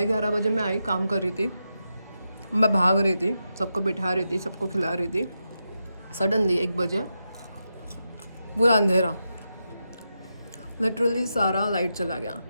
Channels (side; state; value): both; inverted; correlation -0.87